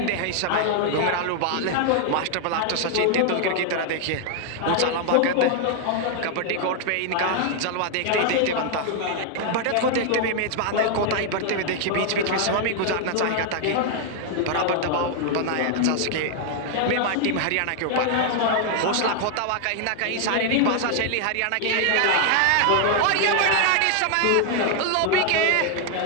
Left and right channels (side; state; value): both; different; correlation 0.00